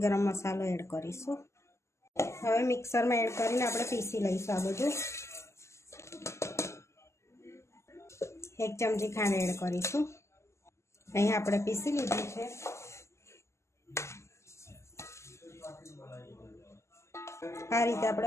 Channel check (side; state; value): right; late; 0.13 ms